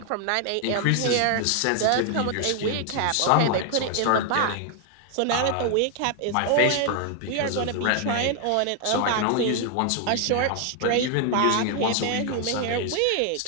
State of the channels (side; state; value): both; different; correlation 0.00